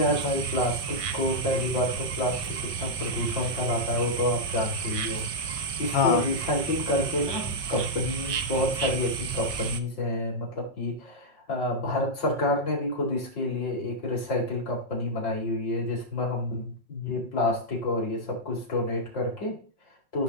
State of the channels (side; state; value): right; late; 5.2 ms